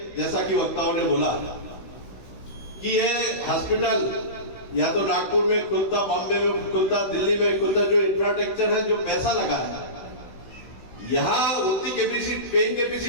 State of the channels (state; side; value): late; right; 16 ms